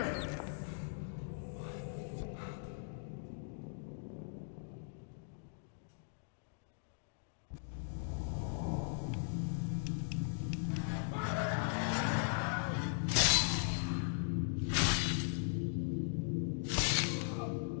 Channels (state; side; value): silent; right; digital silence